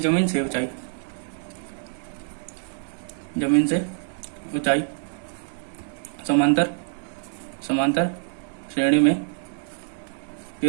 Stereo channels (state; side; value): silent; left; 61 dB below the other